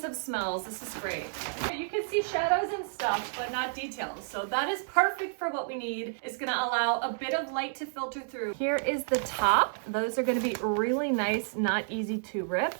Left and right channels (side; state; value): left; silent; 58 dB below the other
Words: smells. This is great. You can see shadows and stuff, but not details. So that is perfect for what we need. It's gonna allow a bit of light to filter through. Here is the top. Those are gonna be really nice, not easy to rip.